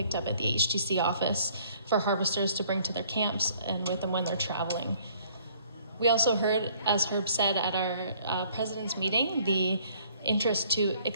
up at the HTC office for harvesters to bring to their camps and with them when they're traveling. We also heard, as Herb said at our president's meeting, the interest to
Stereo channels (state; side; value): inverted; both; correlation -0.61